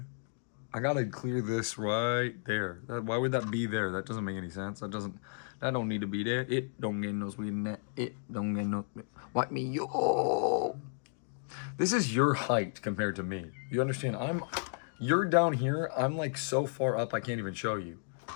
I gotta clear this right there. Why would that be there? That doesn't make any sense. That don't need to be there. It don't get no sweet in that. It don't get no. What me yo? This is your height compared to me. You understand? You're down here. I'm like so far up I can't even show you.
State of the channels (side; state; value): right; silent; 56 dB below the other